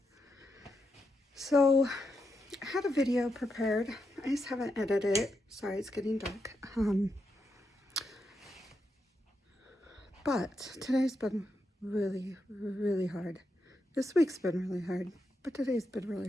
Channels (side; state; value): both; normal; correlation 0.84